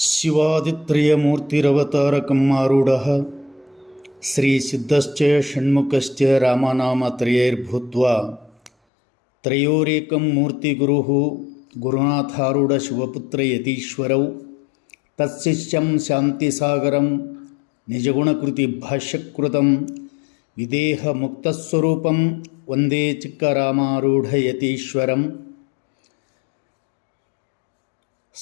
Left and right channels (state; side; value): drops out; right; at 8.7 s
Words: ಶಿವಾದಿತ್ರಯಮೂರ್ತಿರವತಾರಕಂ ಆರೂಢಃ ಶ್ರೀಸಿದ್ಧಶ್ಚ ಷಣ್ಮುಖಶ್ಚ ರಾಮನಾಮತ್ರಯೈರ್ಭೂತ್ವಾ ತ್ರಯೋರೇಕಂ ಮೂರ್ತಿಗುರುಃ ಗುರುನಾಥಾರೂಢ ಶಿವಪುತ್ರ ಯತೀಶ್ವರೌ ತತ್ಶಿಷ್ಯಂ ಶಾಂತಿಸಾಗರಂ ನಿಜಗುಣಕೃತಿ ಭಾಷ್ಯಕೃತಂ ವಿದೇಹ ಮುಕ್ತಸ್ವರೂಪಂ ವಂದೇ ಚಿಕ್ಕರಾಮಾರೂಢ ಯತೀಶ್ವರಂ